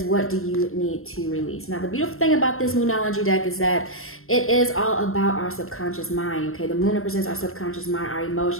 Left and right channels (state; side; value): late; right; 0.62 ms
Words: what do you need to release? Now, the beautiful thing about this Moonology deck is that it is all about our subconscious mind, okay? The moon represents our subconscious mind, our